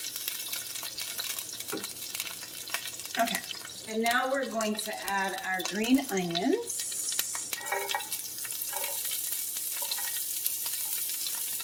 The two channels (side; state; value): both; identical; correlation 1.00